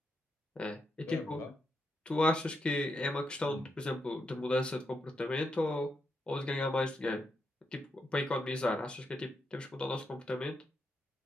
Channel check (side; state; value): both; normal; correlation 0.82